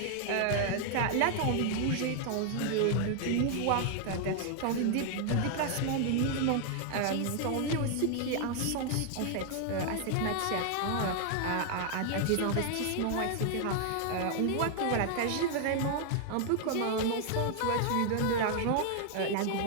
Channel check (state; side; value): different; both; correlation 0.00